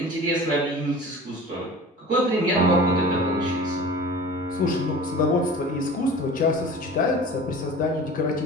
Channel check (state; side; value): normal; both; correlation 0.40